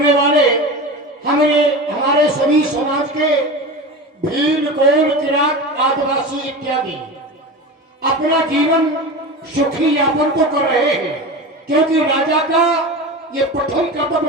वाले हमारे सभी समाज के भील, कोल, किरात, आदिवासी इत्यादि अपना जीवन सुखी यापन तो कर रहे हैं, क्योंकि राजा का ये प्रथम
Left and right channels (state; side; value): normal; both; correlation 0.28